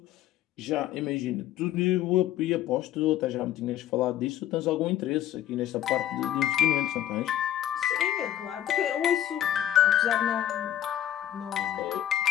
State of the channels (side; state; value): right; quieter; 11.6 dB